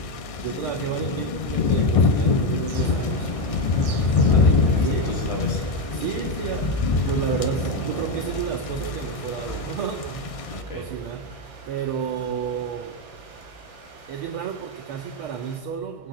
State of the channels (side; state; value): right; late; 1.6 ms